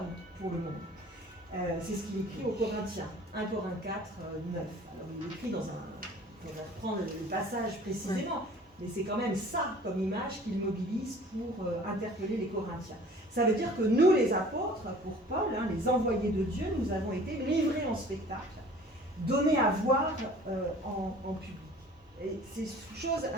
pour le monde. » C'est ce qu'il écrit aux Corinthiens, 1 Corinthiens 4, 9. Alors il écrit dans un... On va reprendre le passage précisément, mais c'est quand même ça comme image qu'il mobilise pour interpeller les Corinthiens. Ça veut dire que nous, les apôtres, pour Paul, les envoyés de Dieu, nous avons été livrés en spectacle, donnés à voir en public. Et c'est une chose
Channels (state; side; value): normal; both; correlation 0.48